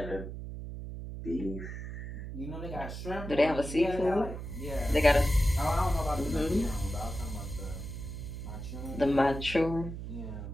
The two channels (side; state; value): right; noise; hum, 8 dB below the sound